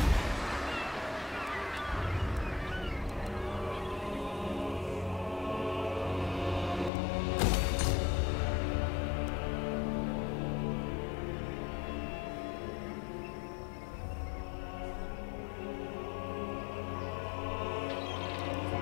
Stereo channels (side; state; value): right; drops out; at 6.9 s